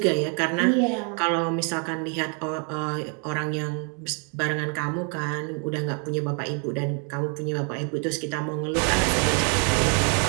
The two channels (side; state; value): left; quieter; 38.6 dB